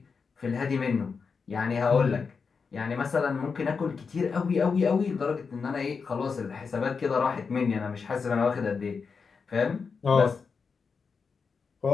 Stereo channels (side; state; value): right; quieter; 5.3 dB